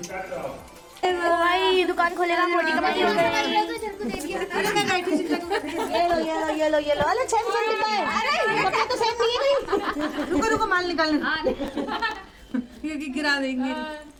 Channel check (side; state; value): both; identical; correlation 1.00